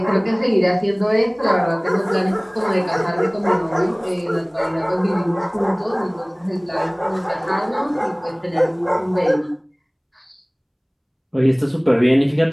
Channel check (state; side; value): identical; both; correlation 1.00